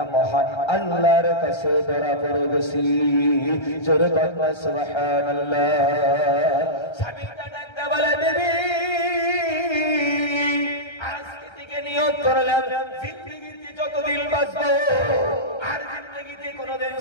মহান আল্লাহর কাছে ধরা পড়ে গেছি। জোরে বলবা সুবহানাল্লাহ। স্বামী ডাকতে বলে, বিবি আজকে থেকে নিয়ত করলাম জিন্দেগিতে যতদিন বাঁচবো আর জিন্দেগিতে কোনোদিন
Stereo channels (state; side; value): late; right; 1.3 ms